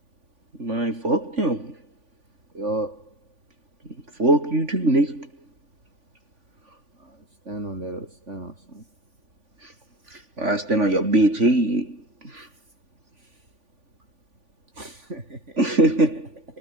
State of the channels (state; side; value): late; left; 3.5 ms